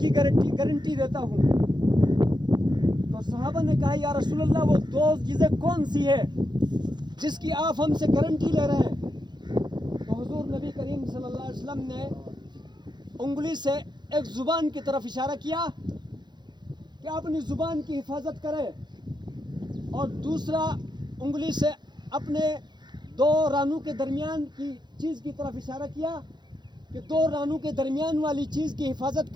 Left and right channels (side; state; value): left; late; 0.21 ms